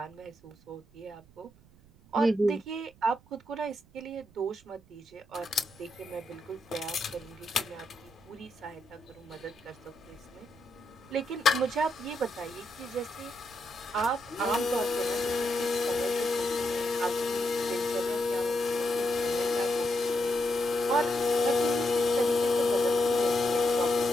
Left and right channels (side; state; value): right; noise; rumble, 27 dB below the sound